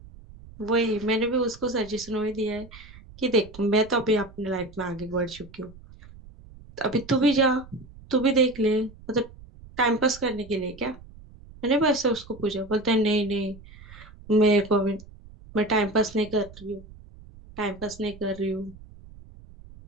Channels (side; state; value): right; noise; rumble, 20 dB below the sound